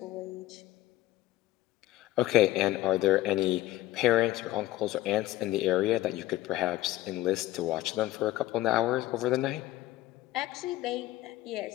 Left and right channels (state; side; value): quieter; right; 15.8 dB